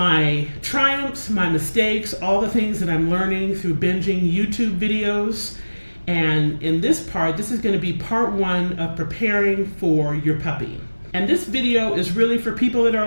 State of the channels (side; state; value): both; inverted; correlation -1.00